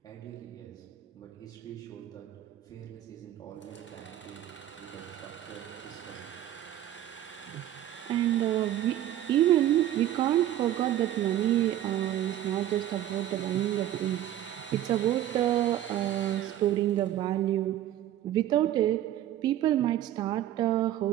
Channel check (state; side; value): quieter; left; 12.5 dB